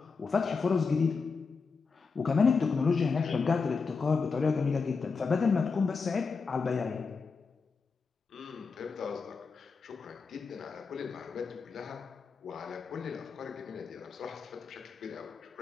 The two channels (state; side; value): quieter; right; 4.9 dB